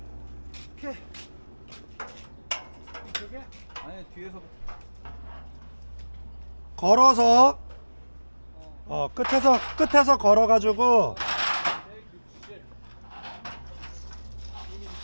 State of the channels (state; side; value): inverted; both; correlation -1.00